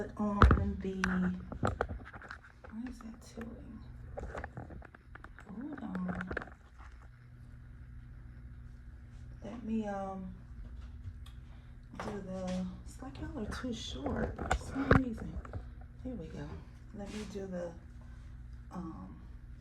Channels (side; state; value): both; identical; correlation 1.00